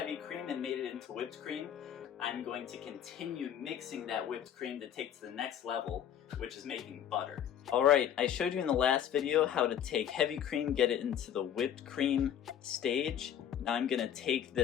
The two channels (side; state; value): right; quieter; 9.6 dB